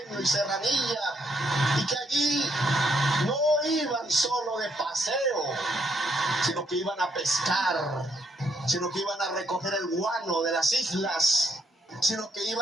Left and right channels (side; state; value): both; normal; correlation 0.73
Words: y Serranilla, y que allí no iban solo de paseo, sino que iban a pescar, sino que iban a recoger el guano de las islas, sino que